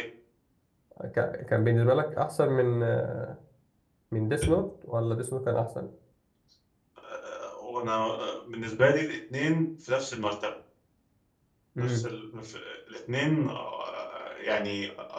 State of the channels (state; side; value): identical; both; correlation 1.00